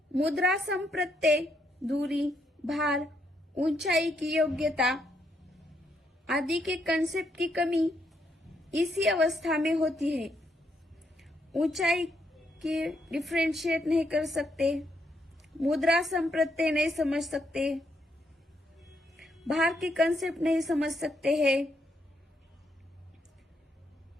मुद्रा संप्रत्यय, दूरी, भार, ऊंचाई की योग्यता आदि के कंसेप्ट की कमी इसी अवस्था में होती है। ऊंचाई की डिफरेंशिएट नहीं कर सकते, मुद्रा संप्रत्यय नहीं समझ सकते, भार के कंसेप्ट नहीं समझ सकते हैं।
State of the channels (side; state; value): both; normal; correlation 0.76